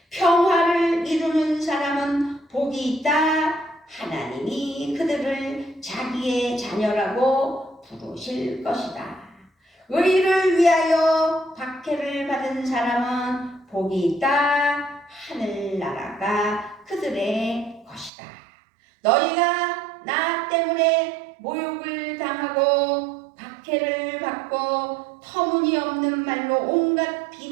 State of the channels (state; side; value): drops out; left; at 18.1 s